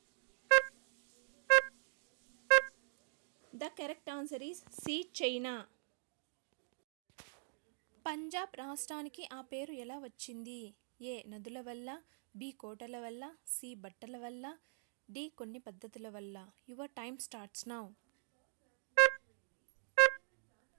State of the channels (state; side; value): silent; left; digital silence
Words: The correct answer is C China. Punjab రాష్ట్రానికి ఆ పేరు ఎలా వచ్చింది? ఏ నదుల వల్ల, బి కోటల వల్ల, సి బట్టల వల్ల, డి కొన్ని పద్ధతుల వల్ల. Your time starts now.